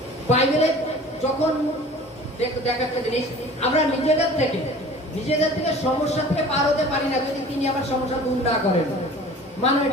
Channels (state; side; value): normal; both; correlation 0.44